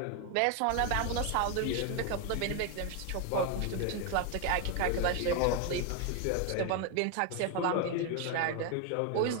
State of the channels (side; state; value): both; different; correlation 0.01